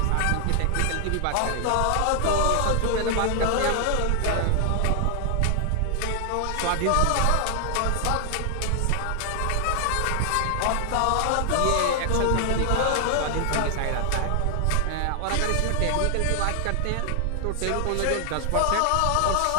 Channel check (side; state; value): both; different; correlation 0.00